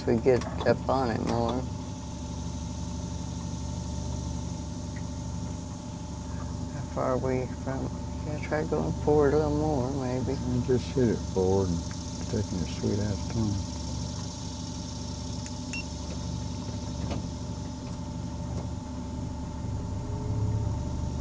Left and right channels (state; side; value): identical; both; correlation 1.00